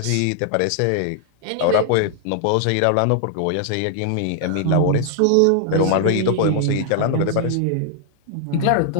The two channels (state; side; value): different; both; correlation 0.00